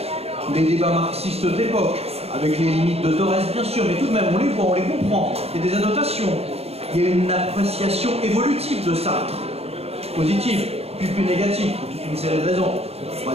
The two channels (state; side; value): late; left; 0.29 ms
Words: les débats marxistes de l'époque, avec les limites de Thorez, bien sûr, mais tout de même, on les voit, on les comprend. Il y a des annotations. Il y a une appréciation évolutive de Sartre, positive, puis plus négative, pour toute une série de raisons. On va